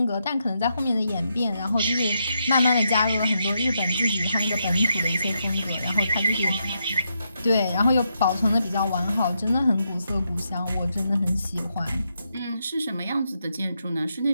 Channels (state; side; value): inverted; both; correlation -0.81